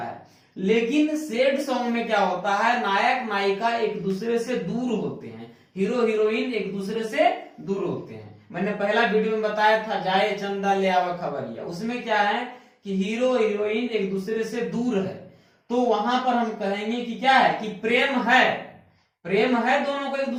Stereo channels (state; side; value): identical; both; correlation 1.00